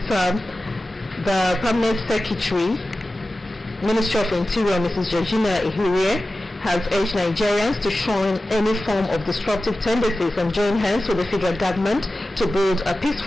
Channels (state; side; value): normal; both; correlation 0.94